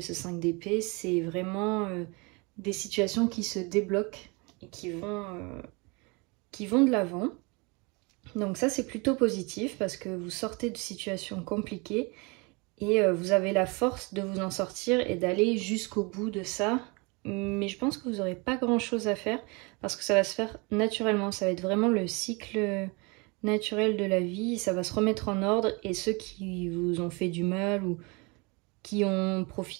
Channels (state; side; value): quieter; left; 28.9 dB